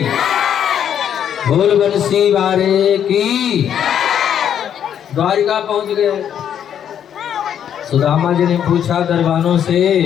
बोल बंसी वारे की। द्वारिका पहुंच गए। सुदामा जी ने पूछा दरबानों से,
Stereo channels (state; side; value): quieter; right; 9.2 dB